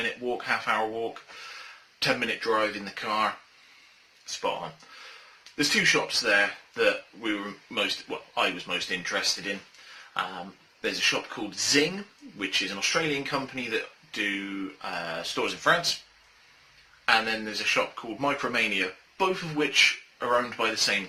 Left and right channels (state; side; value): identical; both; correlation 1.00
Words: walk, half-hour walk, 10-minute drive in the car. Spot on. There's two shops there that I was most interested in. There's a shop called Zing, which is an Australian company that do stores in France. And then there's a shop called Micromania, both of which are owned by the same